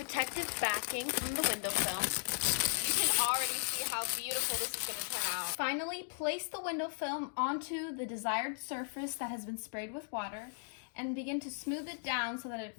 backing from the window film. You can already see how beautiful this is going to turn out. Finally, place the window film onto the desired surface that has been sprayed with water and begin to smooth it down so that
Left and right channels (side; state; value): right; silent; digital silence